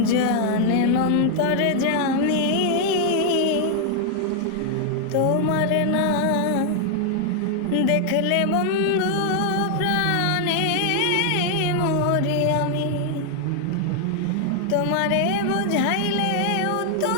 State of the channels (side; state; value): both; different; correlation 0.00